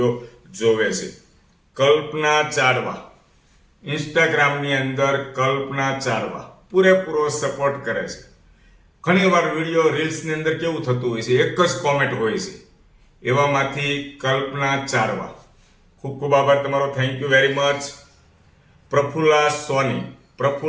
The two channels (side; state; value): both; identical; correlation 1.00